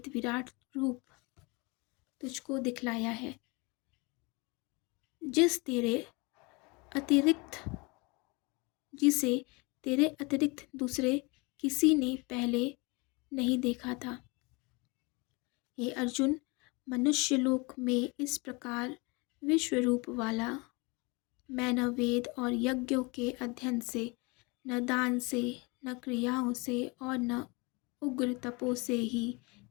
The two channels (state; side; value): quieter; right; 27.6 dB